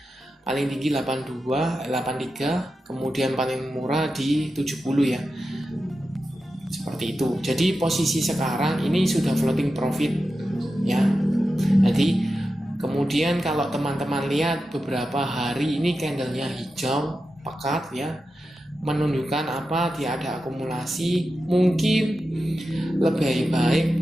paling tinggi 82, 83, kemudian paling murah di 70 ya. Seperti itu. Jadi posisi sekarang ini sudah floating profit ya. Jadi kemudian kalau teman-teman lihat beberapa hari ini candlenya hijau pekat ya, menunjukkan apa? Dia ada akumulasi. Mungkin lebih baik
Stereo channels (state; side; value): normal; both; correlation 0.91